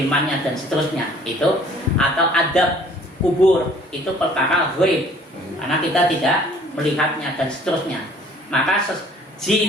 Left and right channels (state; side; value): normal; both; correlation 0.55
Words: dan seterusnya. Itu atau adab kubur, itu perkara ghaib. Karena kita tidak melihatnya dan seterusnya. Maka